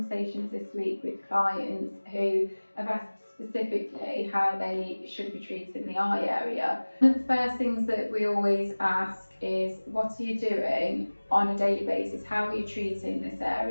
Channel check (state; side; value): inverted; both; correlation -1.00